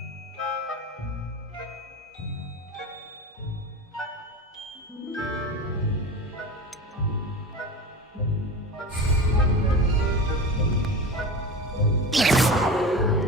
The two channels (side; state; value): both; normal; correlation 0.29